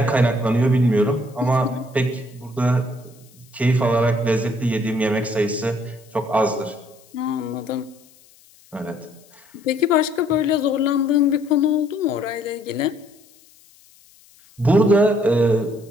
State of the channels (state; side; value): noise; left; hiss, 28 dB below the sound